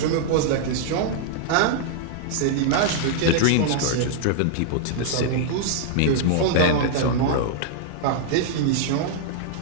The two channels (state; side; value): different; both; correlation -0.01